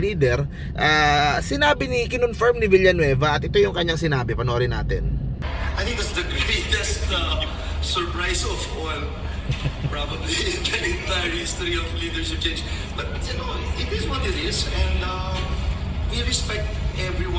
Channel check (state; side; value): identical; both; correlation 1.00